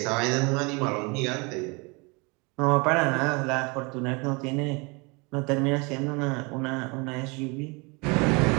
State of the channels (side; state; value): left; quieter; 28.9 dB